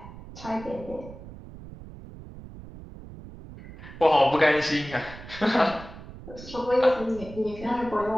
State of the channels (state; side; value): noise; right; rumble, 15 dB below the sound